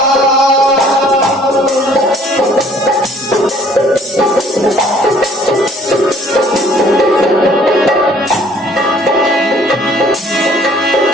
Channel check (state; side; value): normal; both; correlation 0.58